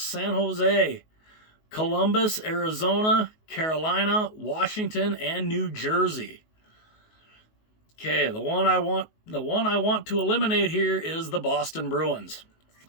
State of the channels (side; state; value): right; late; 19 ms